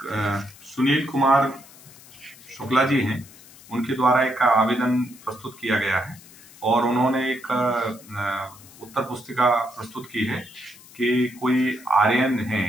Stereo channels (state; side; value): noise; left; hiss, 22 dB below the sound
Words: सुनील कुमार शुक्ला जी हैं, उनके द्वारा एक आवेदन प्रस्तुत किया गया है और उन्होंने एक उत्तर पुस्तिका प्रस्तुत की है कि कोई आर्यन